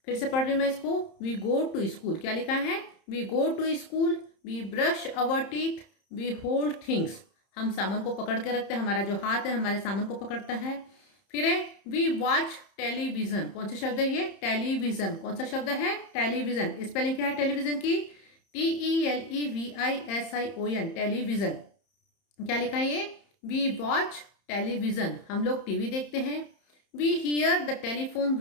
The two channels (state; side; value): late; right; 30 ms